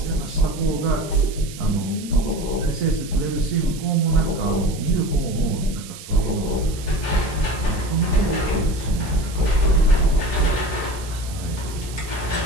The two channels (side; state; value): right; noise; hiss, 15 dB below the sound